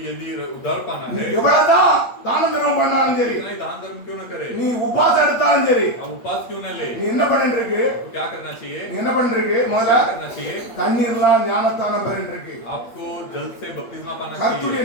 यदि उद्धार पाना நீ है, எவ்வளவுதான் தான தர்மம் பண்ணாலும் சரி, इतना ही दान धर्म क्यों न करे, நீ உபாசம் எடுத்தாலும் சரி, आप उपास क्यों न ले, நீ என்ன பண்ணிட்டு இருக்கு? तो क्या करना चाहिए? நீ என்ன பண்ணிட்டு இருக்கு? முதல்ல क्या करना चाहिए? தண்ணீர்லாம் ஞானஸ்நானம் பெறிட்டு இருக்கு. आपको जल से बपतिस्मा पाना கர்த்தருடைய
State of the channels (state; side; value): late; right; 8.4 ms